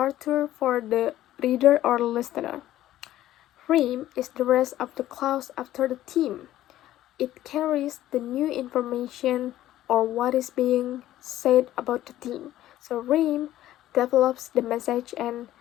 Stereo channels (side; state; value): right; quieter; 13.8 dB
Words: for the reader or listener. Rheme is the rest of the clause after the theme. It carries the new information or what is being said about the theme. So Rheme develops the message and